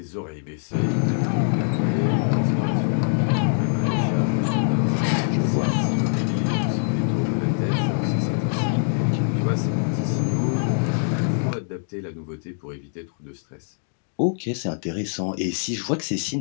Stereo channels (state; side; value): silent; right; digital silence